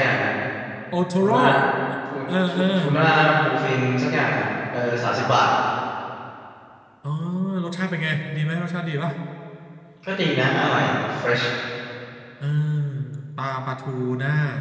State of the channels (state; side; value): identical; both; correlation 1.00